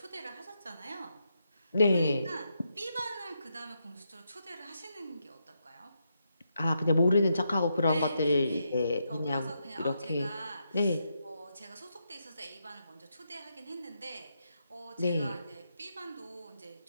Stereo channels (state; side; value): inverted; both; correlation -0.82